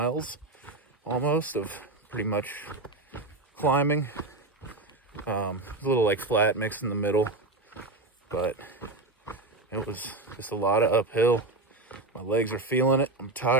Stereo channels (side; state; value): left; quieter; 3.1 dB